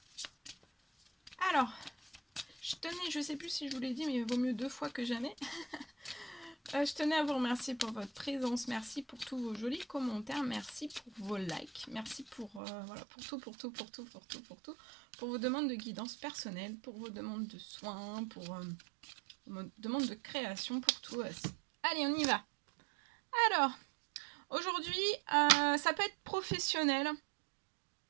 Alors, je sais plus si je vous l'ai dit, mais il vaut mieux 2 fois que jamais. Je tenais à vous remercier pour votre présence, merci pour tous vos jolis commentaires, merci pour vos likes, merci pour, voilà, pour vos demandes de guidance personnelle, pour vos demandes de soins, pour vos demandes de création, pour tout. Allez, on y va. Alors, aujourd'hui, ça peut être professionnel,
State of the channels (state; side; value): drops out; left; at 12.6 s